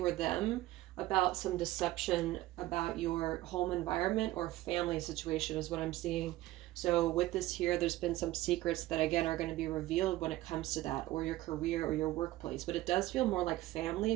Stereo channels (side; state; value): left; quieter; 16.5 dB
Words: or them, about some deception about your home environment or family situation is what I'm seeing. So with this here, there's been some secrets that, again, are going to be revealed when it comes to that, or your career or your workplace. But it does feel more like family